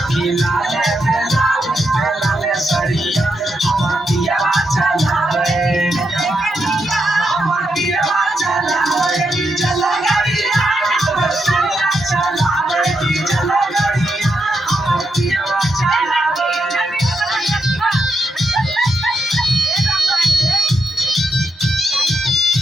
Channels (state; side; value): normal; both; correlation 0.83